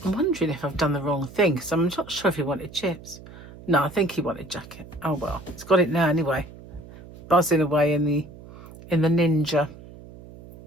wondering if I've done the wrong thing, because I'm not sure if he wanted chips. No, I think he wanted jacket. Oh well, he's got it now anyway. Buzzing away in the Ninja.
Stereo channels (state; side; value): noise; right; hum, 18 dB below the sound